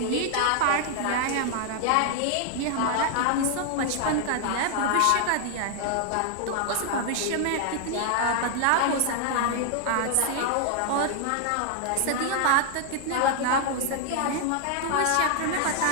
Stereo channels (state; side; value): different; both; correlation 0.00